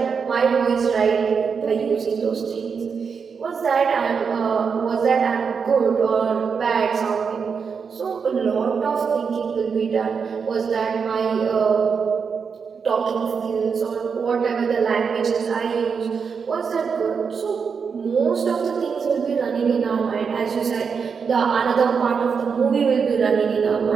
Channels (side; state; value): left; quieter; 5.9 dB